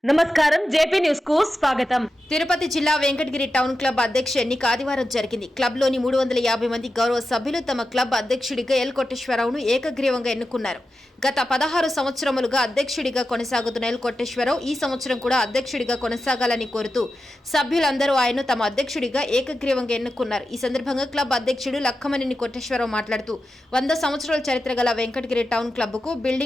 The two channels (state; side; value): normal; both; correlation 0.91